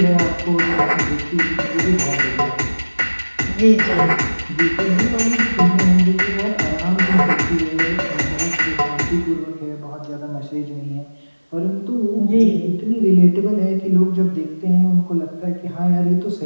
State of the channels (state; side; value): inverted; both; correlation -1.00